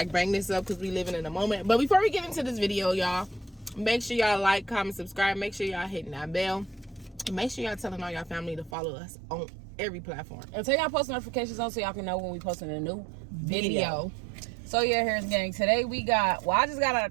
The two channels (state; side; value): drops out; left; at 8.8 s